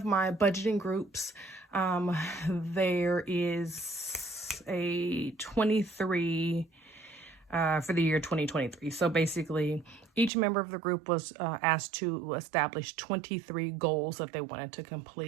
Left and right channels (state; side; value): drops out; left; at 10.3 s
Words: my budgeting groups, there is a 23 for the year 2023. So basically, each member of the group was asked to establish 23 goals that they wanted to